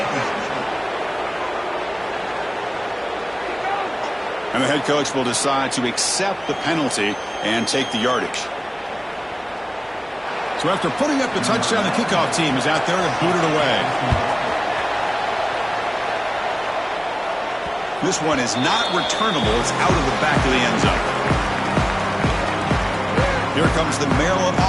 And the head coach will decide to accept the penalty and take the yardage. So after putting up the touchdown, the kickoff team is out there to boot it away. This one is not returnable. It's out of the back of the end zone. Here comes the Maryland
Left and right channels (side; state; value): both; identical; correlation 1.00